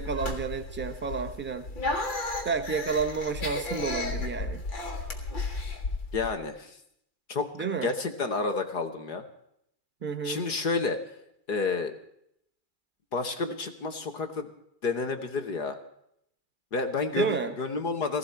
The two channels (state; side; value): late; right; 2.4 ms